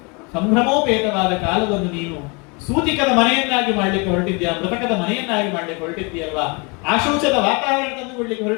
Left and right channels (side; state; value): right; quieter; 30.4 dB